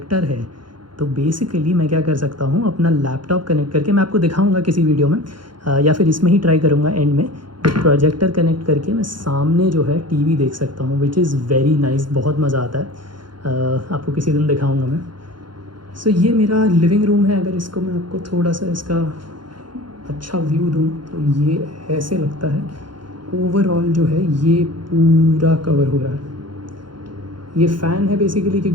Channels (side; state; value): left; late; 0.72 ms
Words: है। तो बेसिकली मैं क्या कर सकता हूँ, अपना लैपटॉप कनेक्ट करके, मैं आपको दिखाऊंगा किसी वीडियो में, या फिर इसमें ही ट्राई करूँगा एंड में। प्रोजेक्टर कनेक्ट करके मैं सामने जो है टीवी देख सकता हूँ, विच इज़ वेरी नाइस, बहुत मज़ा आता है। आपको किसी दिन दिखाऊँगा मैं। सो ये मेरा लिविंग रूम है। अगर इसको मैं आपको थोड़ा सा इसका अच्छा व्यू दूँ तो ये ऐसे लगता है। ओवरऑल जो है ये पूरा कवर हो रहा है। ये फ़ैन है बेसिकली,